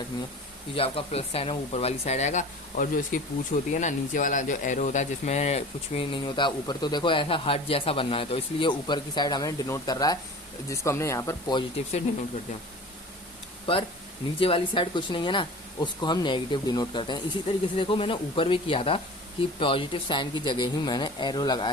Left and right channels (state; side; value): normal; both; correlation 0.39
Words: है कि जो आपका प्लस साइन है वो ऊपर वाली साइड आएगा, और जो इसकी पूछ होती है ना, नीचे वाला जो एरो होता है जिसमें कुछ भी नहीं होता ऊपर, तो देखो ऐसा हार्ट जैसा बनना है, तो इसलिए ऊपर की साइड हमें डिनोट कर रहा है, जिसको हमने यहाँ पर पॉजिटिव से डिनोट कर दिया। पर नीचे वाली साइड कुछ नहीं है ना, उसको हम नेगेटिव डिनोट करते हैं। इसी तरीके से देखो मैंने ऊपर भी किया था कि पॉजिटिव साइन की जगह ही मैंने एरो